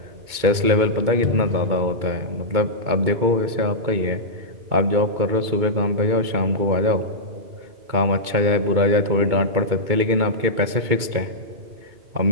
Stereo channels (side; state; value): left; late; 2.2 ms